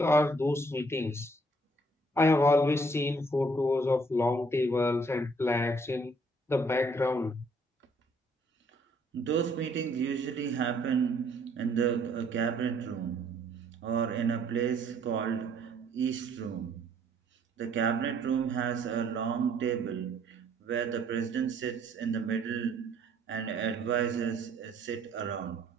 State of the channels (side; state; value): both; normal; correlation 0.63